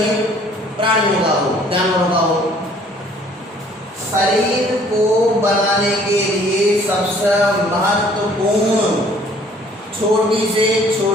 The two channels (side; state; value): both; normal; correlation 0.57